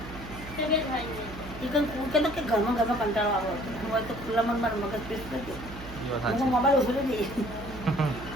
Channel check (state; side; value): noise; right; hum, 13 dB below the sound